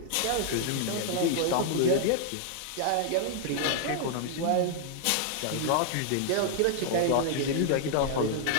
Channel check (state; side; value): different; both; correlation 0.00